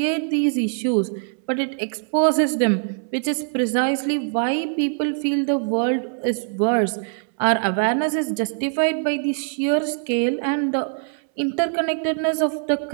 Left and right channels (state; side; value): silent; left; 64 dB below the other